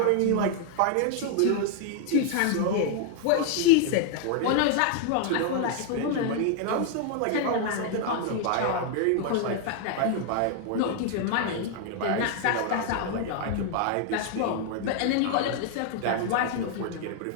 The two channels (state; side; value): different; both; correlation 0.00